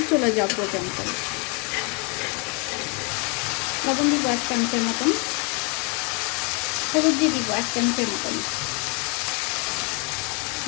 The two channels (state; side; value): quieter; right; 33.9 dB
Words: চলে যাওয়া পর্যন্ত। লবণ দিব 1 চামচের মতন, হলুদ দিয়ে দিব 1 চামচের মতন,